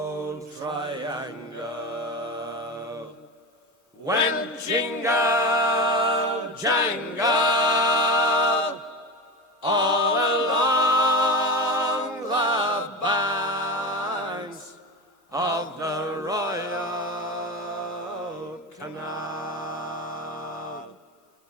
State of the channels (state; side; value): normal; both; correlation 0.23